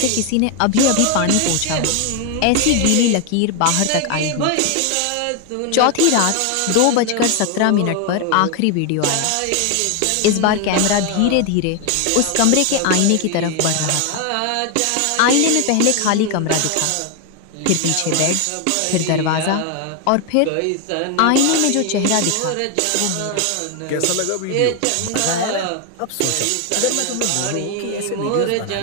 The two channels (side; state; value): both; different; correlation 0.01